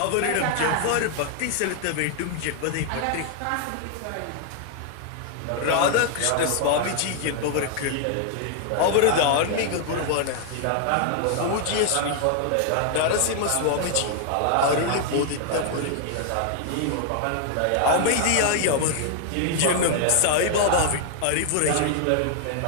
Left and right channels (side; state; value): both; different; correlation 0.00